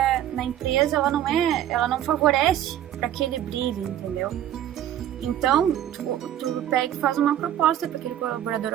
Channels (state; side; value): quieter; left; 11.4 dB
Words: na empresa, ela não favorece para que ele brilhe, entendeu? Então, tu pega e faz uma proposta para aquele colaborador,